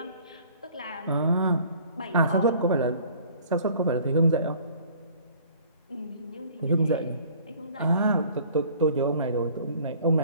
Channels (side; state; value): both; inverted; correlation -0.52